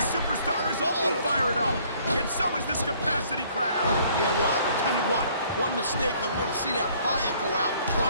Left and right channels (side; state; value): both; inverted; correlation -0.60